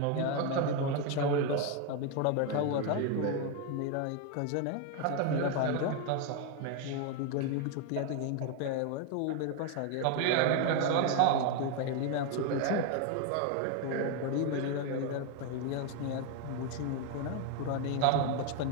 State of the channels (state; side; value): different; both; correlation 0.01